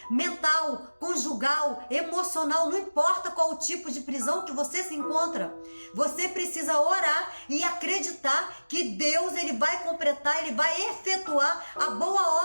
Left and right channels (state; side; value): inverted; both; correlation -1.00